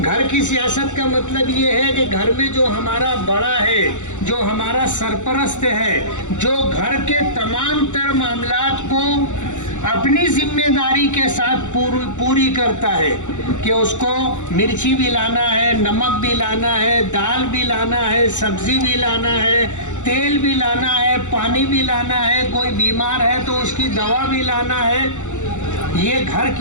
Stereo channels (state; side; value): late; right; 0.85 ms